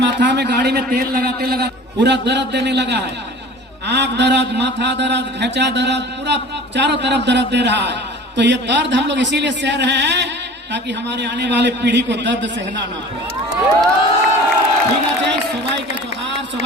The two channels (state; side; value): normal; both; correlation 0.42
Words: में गाड़ी में तेल लगाते लगा पूरा दर्द देने लगा है। आंख दर्द, माथा दर्द, घेचा दर्द, पूरा चारों तरफ दर्द दे रहा है। तो ये दर्द हम लोग इसीलिए सह रहे हैं ताकि हमारे आने वाले पीढ़ी को दर्द सहना ना पड़े। ঠিক আছে, সবাইকে জোহার,